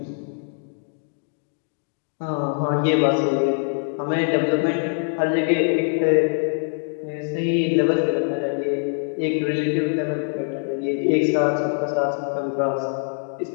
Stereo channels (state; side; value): silent; right; 63 dB below the other